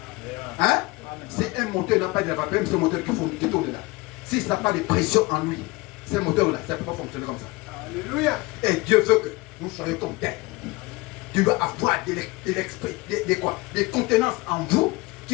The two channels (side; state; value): right; quieter; 22.9 dB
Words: Hein? Si un moteur n'a pas de la vapeur, c'est un moteur qui tourne là. Si ça n'a pas de pression en lui, ce moteur-là, ça ne peut pas fonctionner comme ça. Alléluia. Et Dieu veut que nous soyons comme tel. Dieu doit avoir de l'esprit, des contenances en vous